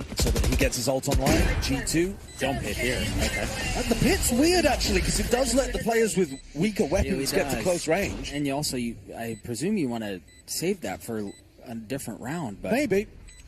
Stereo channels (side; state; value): both; identical; correlation 1.00